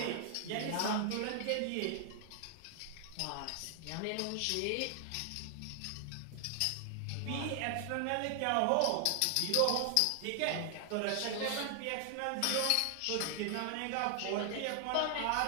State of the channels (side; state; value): both; different; correlation 0.00